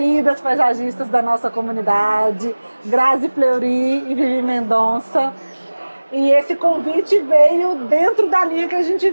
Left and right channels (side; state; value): both; inverted; correlation -1.00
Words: paisagistas da nossa comunidade, Grazi Fleury e Vivi Mendonça. E esse convite veio dentro da linha que a